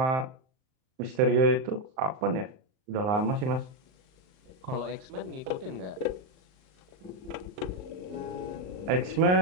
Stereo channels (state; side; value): late; left; 39 ms